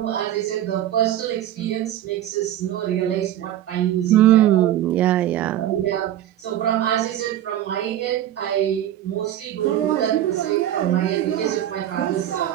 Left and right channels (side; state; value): left; quieter; 12.0 dB